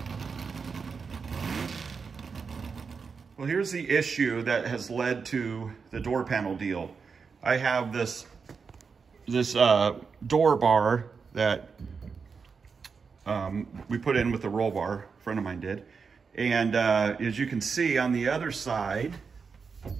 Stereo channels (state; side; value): quieter; left; 5.4 dB